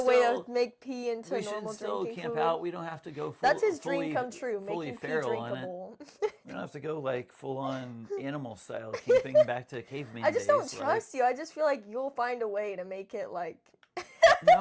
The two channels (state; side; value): identical; both; correlation 1.00